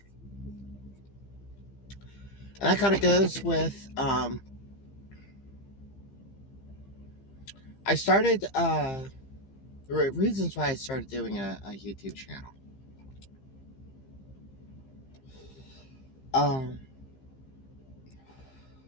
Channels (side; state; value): right; late; 15 ms